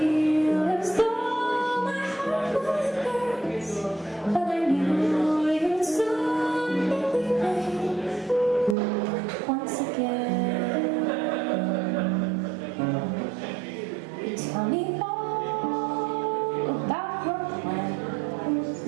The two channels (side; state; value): left; drops out; at 8.8 s